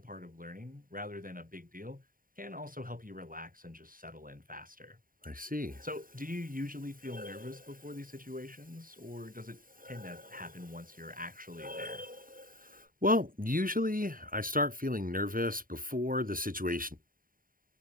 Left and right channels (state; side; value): late; left; 0.41 ms